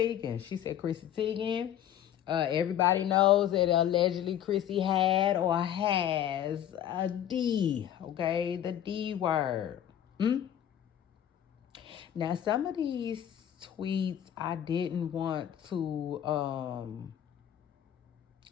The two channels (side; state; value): right; quieter; 10.7 dB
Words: She said Chrissy Teigen. Everybody knows that allegedly Chrissy had or has a D, okay? The D word. Now, some of these tweets I didn't want to